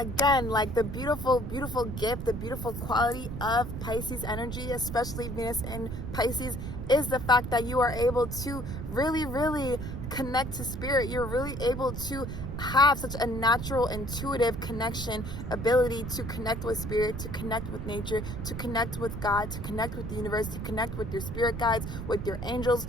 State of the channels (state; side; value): noise; right; rumble, 6 dB below the sound